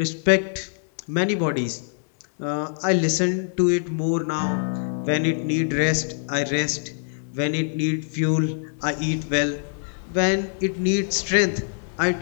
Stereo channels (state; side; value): silent; right; digital silence